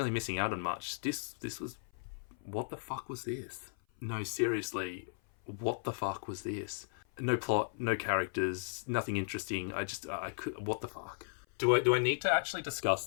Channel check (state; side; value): silent; right; 54 dB below the other